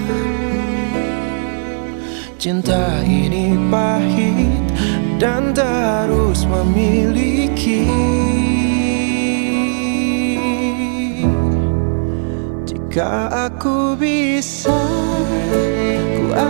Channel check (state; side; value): silent; left; digital silence